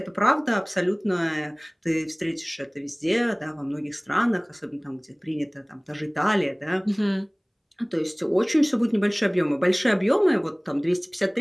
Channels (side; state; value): both; identical; correlation 1.00